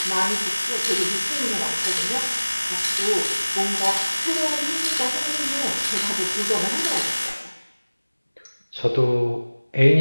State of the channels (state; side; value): inverted; both; correlation -1.00